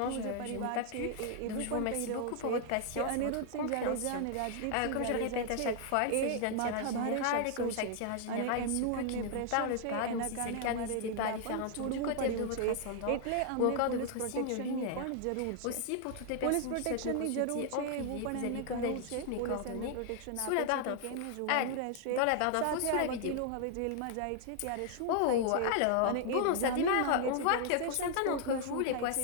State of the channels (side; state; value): both; different; correlation 0.00